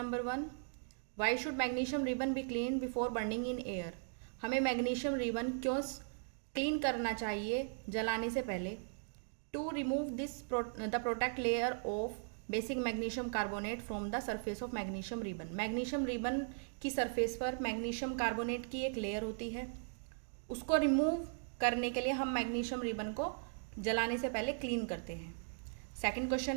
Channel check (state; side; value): silent; left; digital silence